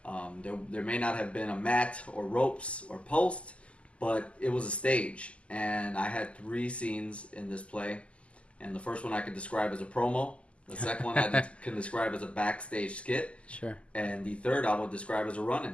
There may not have been a mat or ropes or post, but it was a stage. And I had 3 scenes in this play. And the first one I could describe as a promo. The second one I can describe as a backstage skit. Sure. And the third I would describe as a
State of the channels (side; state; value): right; late; 0.057 ms